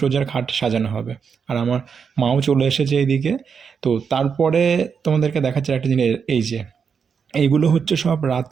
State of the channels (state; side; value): quieter; left; 6.4 dB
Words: খাট সাজানো হবে। আর আমার মাও চলে এসেছে এইদিকে। তো তারপরে তোমাদেরকে দেখাচ্ছে একটা জিনিস, এই যে এইগুলো হচ্ছে সব